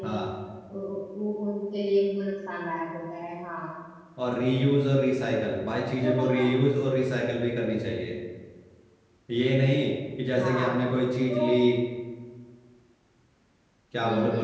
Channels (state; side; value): identical; both; correlation 1.00